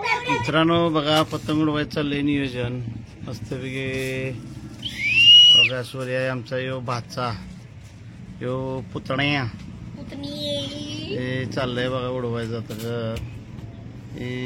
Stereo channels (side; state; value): both; identical; correlation 1.00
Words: मित्रांनो बघा, पतंग उडवायचं चाललंय नियोजन मस्तपैकी. बघा सूर्य आहे आमचा, यो भाचा, यो पुतण्या. हे चाललंय बघा उडवायचं आता.